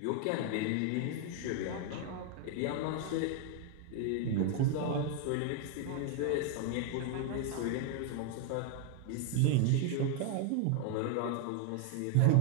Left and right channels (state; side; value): different; both; correlation 0.00